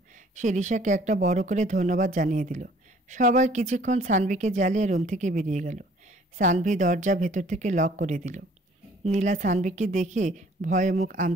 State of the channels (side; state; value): both; normal; correlation 0.57